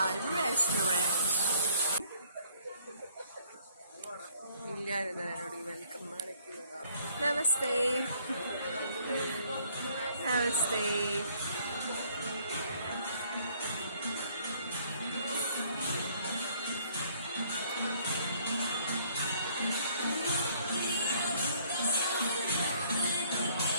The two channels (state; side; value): inverted; both; correlation -0.62